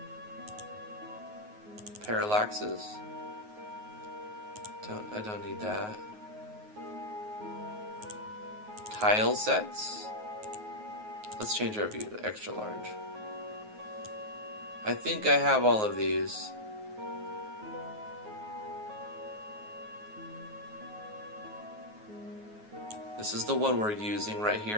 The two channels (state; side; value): late; left; 9.4 ms